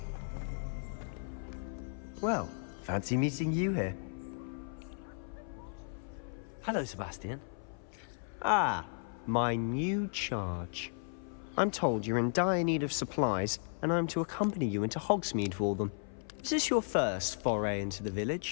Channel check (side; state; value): right; silent; 54 dB below the other